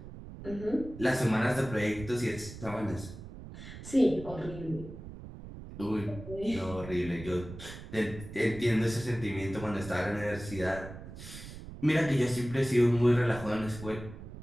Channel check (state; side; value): noise; right; rumble, 13 dB below the sound